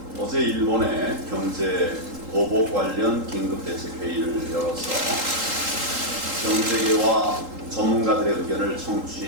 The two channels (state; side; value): late; left; 3.8 ms